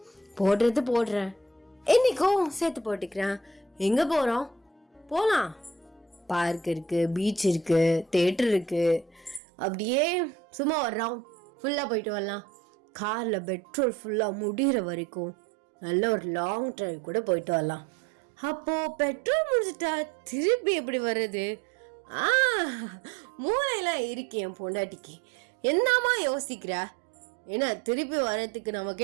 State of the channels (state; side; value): drops out; left; at 9.4 s